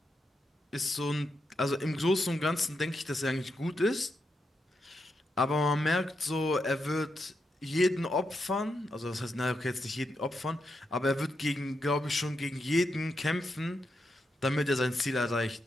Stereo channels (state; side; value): normal; both; correlation 0.84